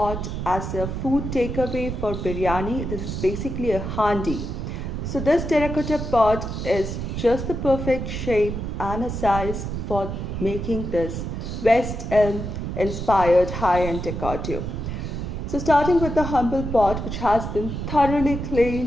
as a food takeaway for biryani. This is basically a handi. So this terracotta pot is just the perfect shape and a size for making this West Elm inspired high-end decor tube. So starting with the humble pot, which has been thoroughly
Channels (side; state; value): right; noise; rumble, 5 dB below the sound